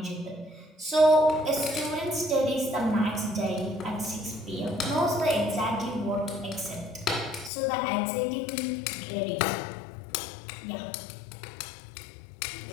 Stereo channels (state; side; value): drops out; right; at 7.5 s